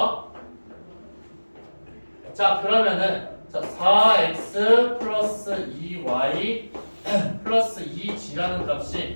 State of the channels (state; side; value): inverted; both; correlation -1.00